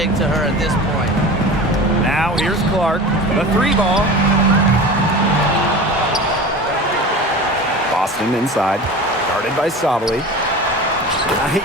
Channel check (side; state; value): both; normal; correlation 0.34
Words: to her at this point. Now here's Clark. The 3 ball. Boston inside, guarded by Sabali.